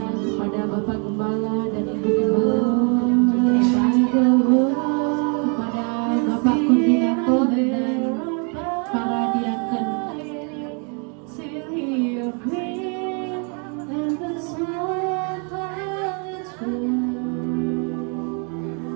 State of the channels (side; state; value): left; quieter; 37.3 dB